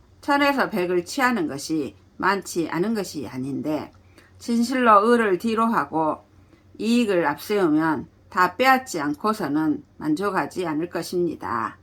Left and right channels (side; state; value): both; identical; correlation 1.00